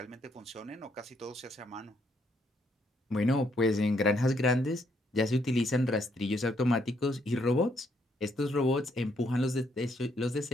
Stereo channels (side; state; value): both; normal; correlation 0.72